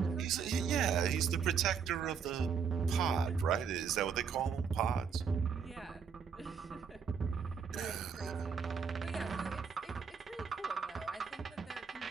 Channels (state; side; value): quieter; left; 6.4 dB